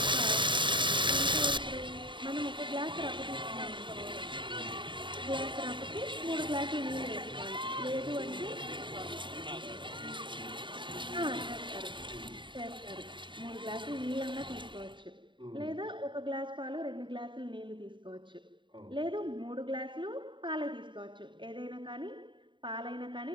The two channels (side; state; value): left; late; 0.23 ms